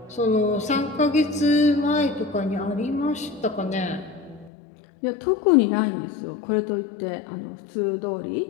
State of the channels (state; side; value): drops out; right; at 4.5 s